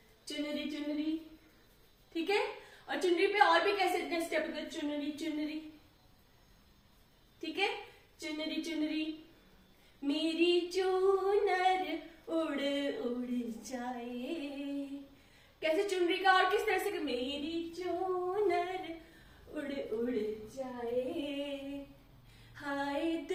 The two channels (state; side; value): identical; both; correlation 1.00